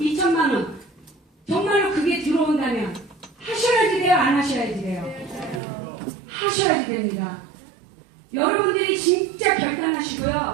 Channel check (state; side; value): drops out; left; at 5.6 s